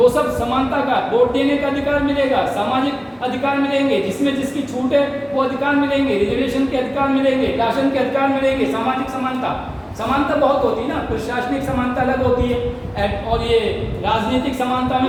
सब समानता का। वोट देने का अधिकार मिलेगा, सामाजिक अधिकार मिलेंगे, जिसमें जिसकी छूट है वो अधिकार मिलेंगे, रिजर्वेशन के अधिकार मिलेंगे, राशन के अधिकार मिलेंगे, सामाजिक समानता। समानता बहुत होती है ना, प्रशासनिक समानता अलग होती है, और ये राजनीतिक समानता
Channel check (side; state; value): both; identical; correlation 1.00